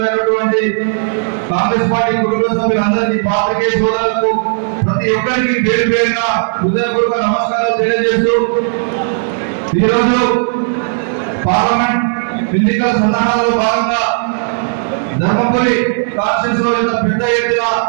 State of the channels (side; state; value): left; silent; digital silence